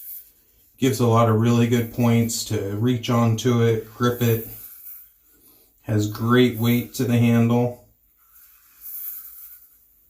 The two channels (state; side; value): identical; both; correlation 1.00